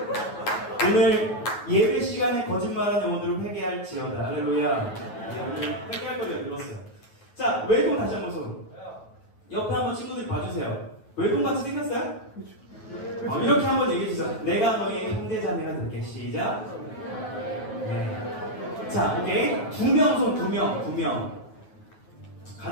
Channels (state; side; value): late; right; 9.3 ms